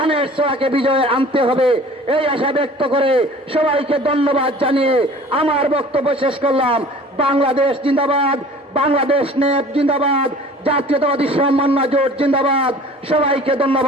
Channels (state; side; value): normal; both; correlation 0.46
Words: ছোড়াকে বিজয়ে আনতে হবে, এই আশা ব্যক্ত করে সবাইকে ধন্যবাদ জানিয়ে আমার বক্তব্য শেষ করলাম। বাংলাদেশ জিন্দাবাদ, বাংলাদেশ নেপ জিন্দাবাদ, জাতীয়তাবাদী সমন্বয় জোট জিন্দাবাদ। সবাইকে